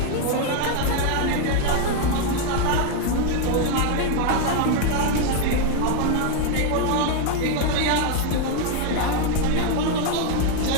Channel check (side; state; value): both; different; correlation 0.01